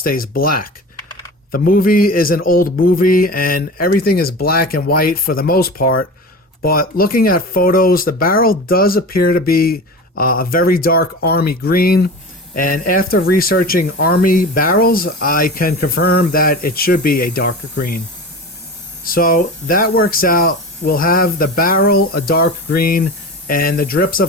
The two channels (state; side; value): normal; both; correlation 0.32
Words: black. The movie is an old movie and everything is black and white for the most part, but looking at photos, the barrel does appear to be a very dark army green. And after researching army barrels, I can confirm that it should be a darker green. So that works out. We'll have the barrel a dark green and the drips